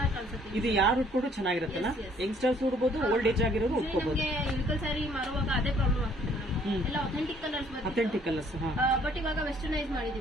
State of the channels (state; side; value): normal; both; correlation 0.61